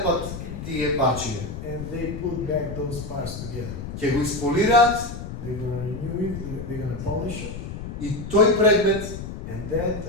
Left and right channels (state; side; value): noise; left; rumble, 8 dB below the sound